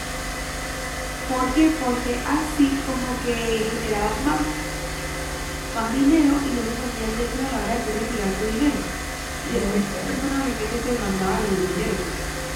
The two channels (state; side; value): identical; both; correlation 1.00